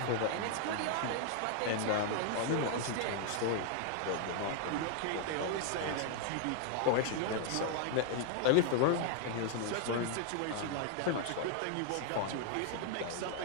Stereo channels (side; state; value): both; different; correlation 0.00